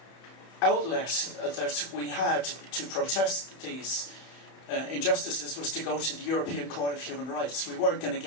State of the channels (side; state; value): right; late; 31 ms